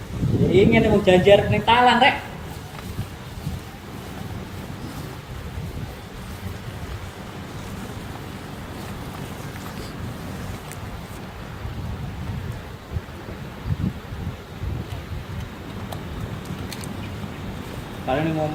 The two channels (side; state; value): both; identical; correlation 1.00